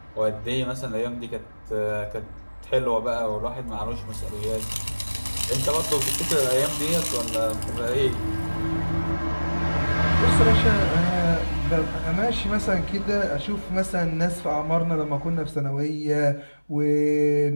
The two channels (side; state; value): both; inverted; correlation -1.00